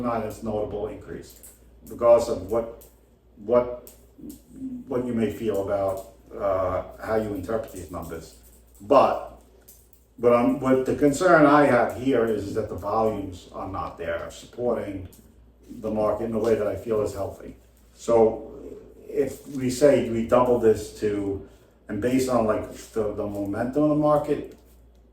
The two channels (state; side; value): identical; both; correlation 1.00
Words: that's notable increase, regardless of what you may feel about how you interpret these numbers. But what the concern I have here is that the volumes are not there supporting the market in a way that I feel is healthy. So if we say we double this to, and based on like the momentum of the market,